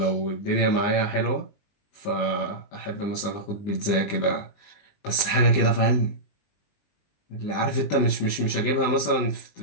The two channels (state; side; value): late; right; 19 ms